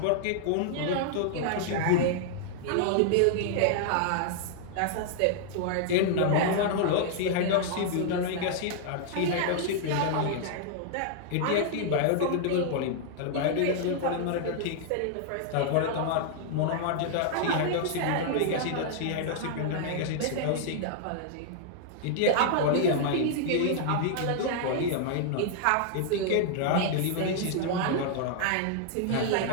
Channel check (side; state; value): both; different; correlation -0.01